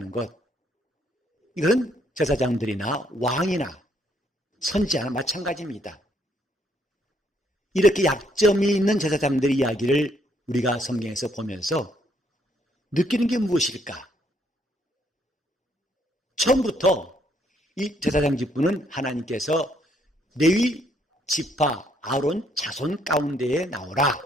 것. 이건 제사장들이나 왕이나 선지자나 마찬가지입니다. 이렇게 약점이 있는 제사장들의 이야기를 우리가 성경에서 보면서 느끼는 게 무엇일까? 처음부터 이 제사장 직분은 하나님께서 레위 지파 아론 자손 가운데에 나오라.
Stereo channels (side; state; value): both; normal; correlation 0.70